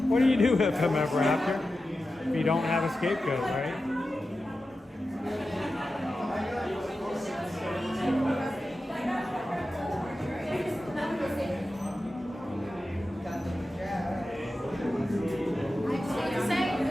What do you do with him ever after? If you don't have a scapegoat, right?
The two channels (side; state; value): both; normal; correlation 0.92